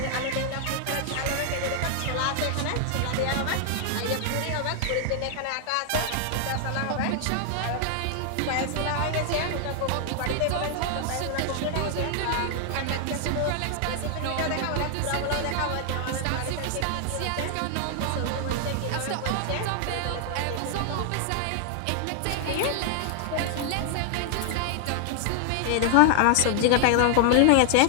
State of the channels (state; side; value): different; both; correlation 0.00